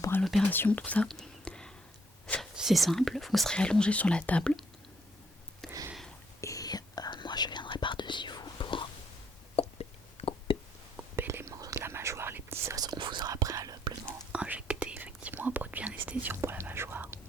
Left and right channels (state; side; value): normal; both; correlation 0.69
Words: à l'opération, tout ça? C'est simple, vous serez allongé sur la table. Et moi je viendrai par-dessus vous pour couper les morceaux de la mâchoire, les petits os. On vous aura préalablement injecté effectivement un produit anesthésiant pour la mâchoire.